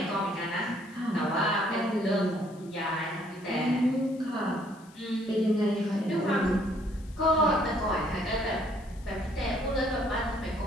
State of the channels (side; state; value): left; noise; hiss, 26 dB below the sound